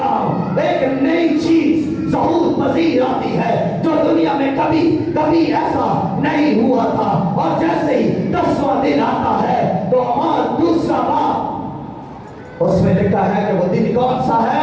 ایک نئی چیز ظہور پذیر آتی ہے جو دنیا میں کبھی ایسا نہیں ہوا تھا۔ اور جیسے ہی 10واں دن آتا ہے تو ہمارا دوسرا باپ اس میں لکھا ہے کہ وہ دن کون سا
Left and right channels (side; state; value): both; identical; correlation 1.00